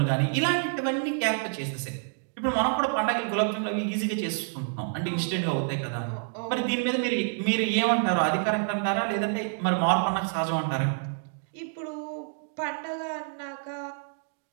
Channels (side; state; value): left; silent; digital silence